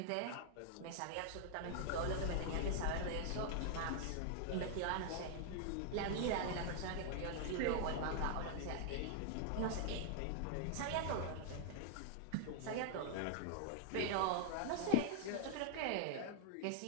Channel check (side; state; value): both; different; correlation -0.01